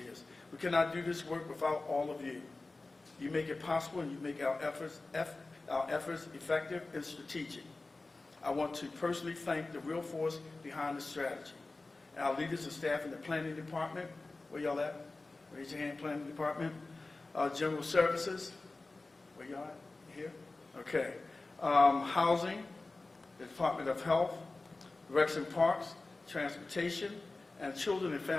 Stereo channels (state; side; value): quieter; right; 3.3 dB